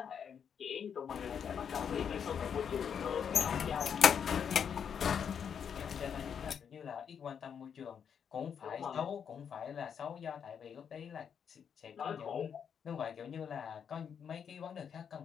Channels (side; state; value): right; quieter; 7.5 dB